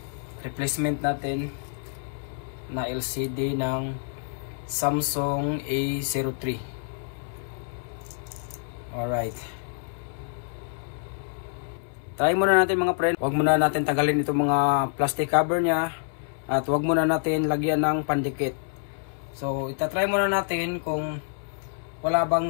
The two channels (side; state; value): right; silent; 60 dB below the other